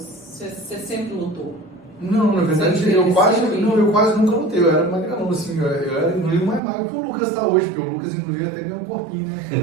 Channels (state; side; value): drops out; left; at 6.6 s